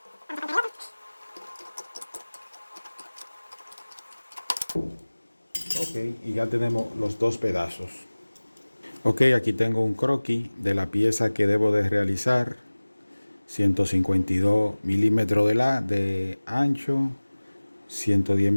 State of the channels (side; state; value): both; inverted; correlation -1.00